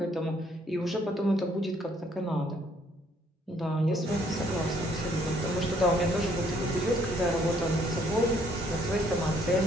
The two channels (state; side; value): normal; both; correlation 0.66